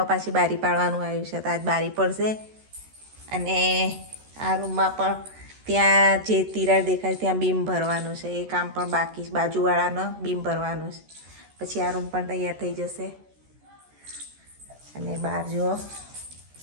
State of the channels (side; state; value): left; late; 13 ms